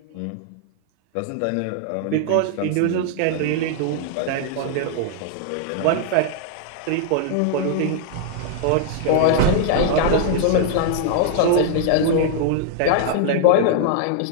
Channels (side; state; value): both; different; correlation 0.00